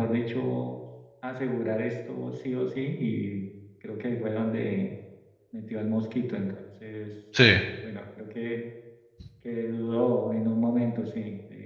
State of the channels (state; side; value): identical; both; correlation 1.00